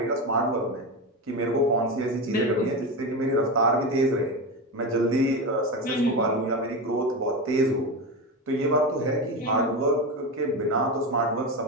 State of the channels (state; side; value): normal; both; correlation 0.19